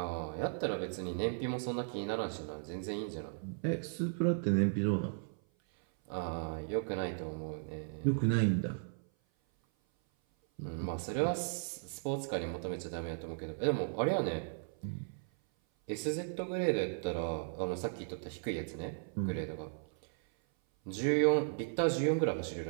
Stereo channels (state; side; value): silent; left; 54 dB below the other